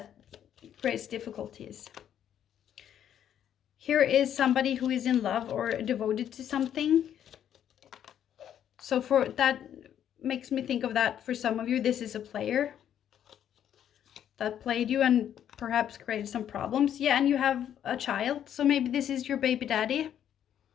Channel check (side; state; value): right; quieter; 9.9 dB